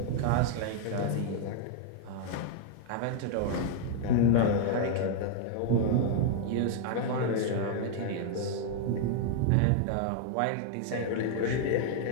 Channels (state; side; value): different; both; correlation 0.00